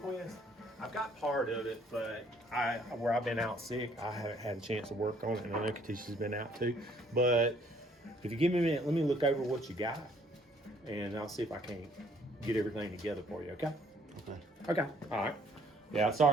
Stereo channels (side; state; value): both; normal; correlation 0.63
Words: I've got part of it, but where I've been out sick, I haven't had a chance to work on it, and I know Katisha's been out too. But if you give me a minute, let me look over what you got, and I'll see if I can get everything together for you, okay? Okay, all right. Yeah,